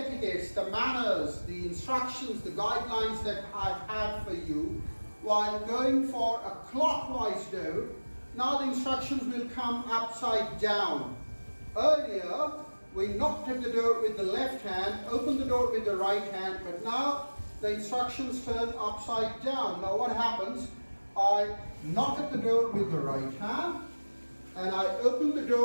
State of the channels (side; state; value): both; inverted; correlation -1.00